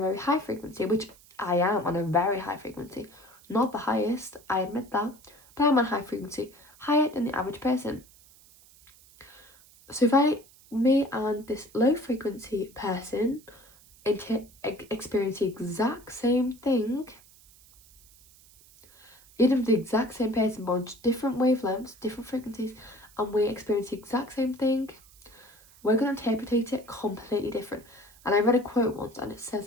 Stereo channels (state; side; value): noise; right; hiss, 25 dB below the sound